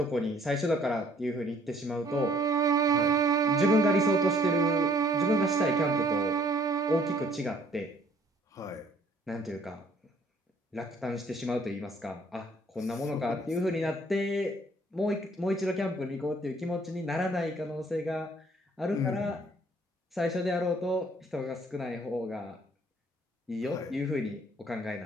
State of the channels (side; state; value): both; normal; correlation 0.61